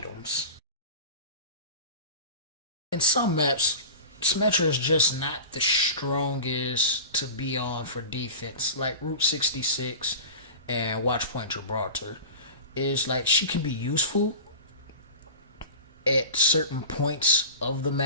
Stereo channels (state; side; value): inverted; both; correlation -0.33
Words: In some maps, Symmetra is just not the strongest to be on for defense, like Route 66 and Watchpoint Gibraltar. Is like, she can be useful at certain points of the